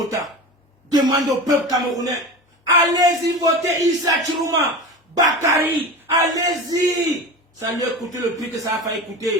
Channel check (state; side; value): normal; both; correlation 0.29